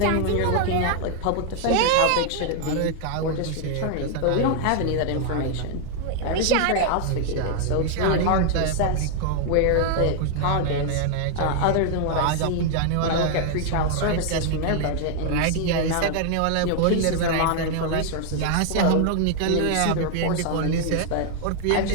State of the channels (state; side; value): different; both; correlation 0.00